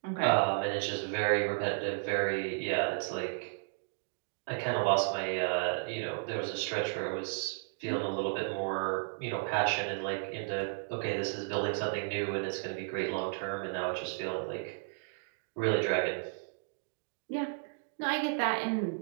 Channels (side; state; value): left; silent; digital silence